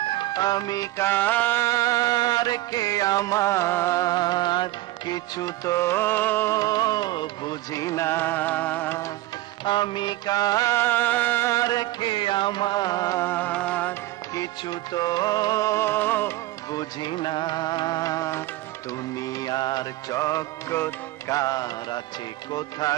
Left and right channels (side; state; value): left; quieter; 16.9 dB